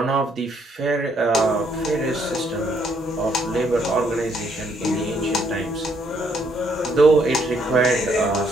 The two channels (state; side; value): normal; both; correlation 0.70